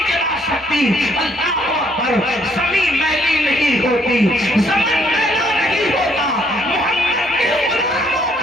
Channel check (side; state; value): both; normal; correlation 0.67